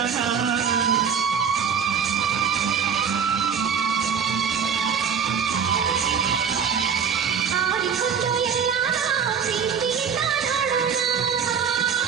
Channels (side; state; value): left; quieter; 7.0 dB